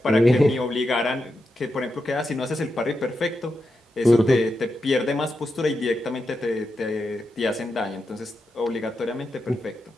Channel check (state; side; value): normal; both; correlation 0.87